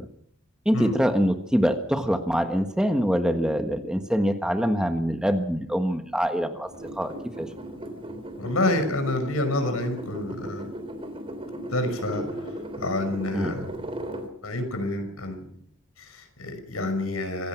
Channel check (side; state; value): both; normal; correlation 0.71